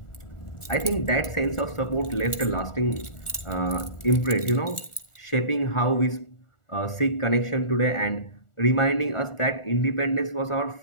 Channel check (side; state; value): right; late; 1.4 ms